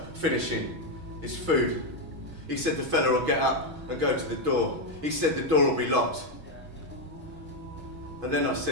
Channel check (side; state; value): left; late; 6.2 ms